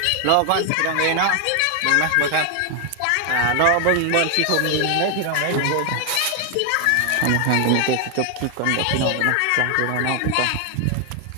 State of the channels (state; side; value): different; both; correlation 0.00